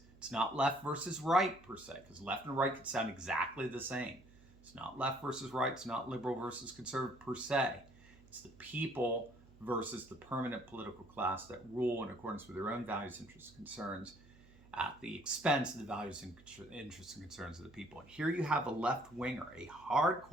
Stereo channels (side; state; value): right; noise; hum, 24 dB below the sound